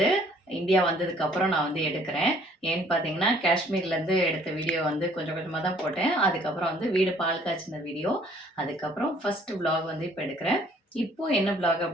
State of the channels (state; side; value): normal; both; correlation 0.59